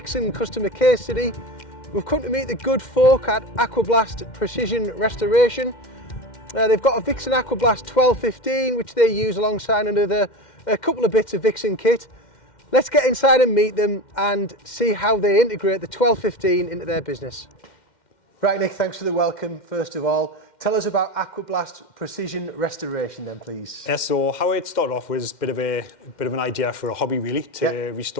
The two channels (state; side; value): late; right; 2.1 ms